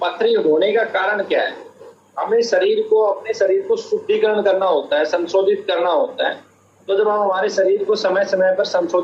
होने का कारण क्या है? हमें अपने शरीर को शुद्धिकरण करना होता है, संशोधित करना होता है। तो जब हम हमारे शरीर को समय समय पर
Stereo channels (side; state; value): both; identical; correlation 1.00